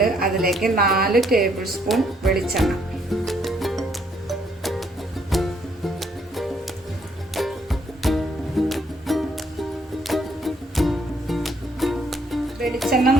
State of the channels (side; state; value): both; normal; correlation 0.69